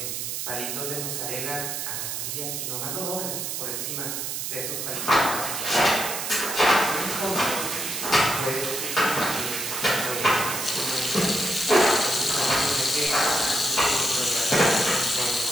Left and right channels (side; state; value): right; noise; hiss, 3 dB below the sound